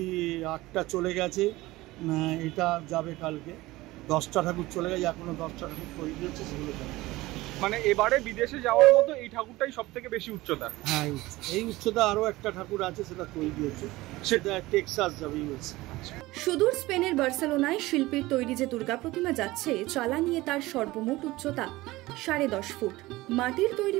8টা চলে গেছে, এটা যাবে কালকে। 10টা ঠাকুর চলে গেছে, এখনো 10টা ঠাকুর তৈরি হচ্ছে, সেগুলো যাবে। মানে এবারে বিদেশে যাওয়ার মতো এই ঠাকুরটাই সব থেকে বেশি উচ্চতা। হ্যাঁ, এই উচ্চতা আরো একটা ঠাকুর আছে, সেটা তৈরি হচ্ছে, সেটা টেক্সাস যাবে ইউএসএ। সুদূর স্পেনের বার্সেলোনায় শিল্পীর তৈরি যে দুর্গা প্রতিমা যাচ্ছে, চালা নিয়ে তার সর্বমোট উচ্চতা 10.5 ফুট। মাটির তৈরি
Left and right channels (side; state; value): left; quieter; 19.1 dB